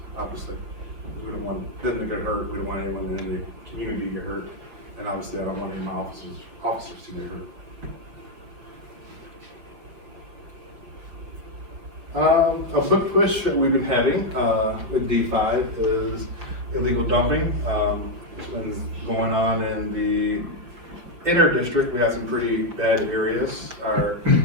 obviously. We don't want them to get hurt, we don't want anyone in the community to get hurt, and obviously I don't want any of my officers to get hurt. A book push that we've been having, with D5 is illegal dumping. It's been going on in the inner district. We have some pretty bad areas.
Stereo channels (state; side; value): late; left; 5.5 ms